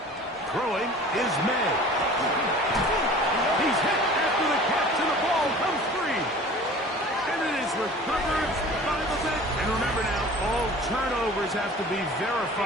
Throwing is May. He's hit after the catch, and the ball comes free. And it is recovered by the vet. And remember now, all turnovers have to be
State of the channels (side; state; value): both; normal; correlation 0.43